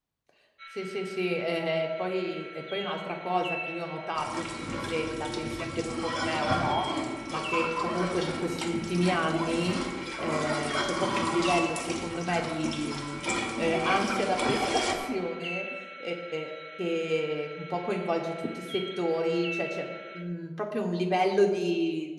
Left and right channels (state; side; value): identical; both; correlation 1.00